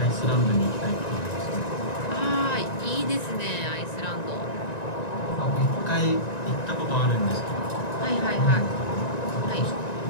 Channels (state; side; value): late; right; 1.9 ms